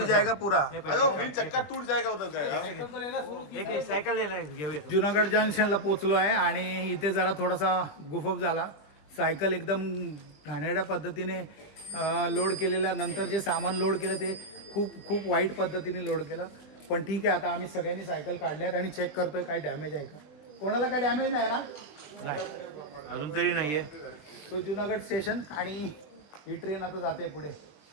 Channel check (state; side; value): late; right; 20 ms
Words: जाएगा पूरा. अयो व्हील चक्का टूट जाएगा उधर का यार. सायकल ले. जुनागड जंक्शनला पोचलो आहे आणि इथे जरा थोडासा गुफअप झाला. सायकल एकदम घाणेरड्या पद्धतीने लोड केलेल्या नंतर जे सामान लोड केलं ते खूप वाईट पद्धतीने लोड केलं. पण ठीक आहे, आता आम्ही सगळ्यांनी सायकल काढल्यात आणि चेक करतोय काय डॅमेज आहे का. कोणाला काय डॅमेज नाही ना? अजून तरी नाहीये. सो जुनागड स्टेशन आणि ही ट्रेन आता जाते पुढे.